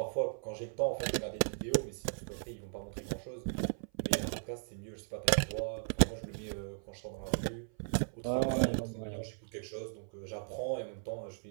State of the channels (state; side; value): silent; left; 53 dB below the other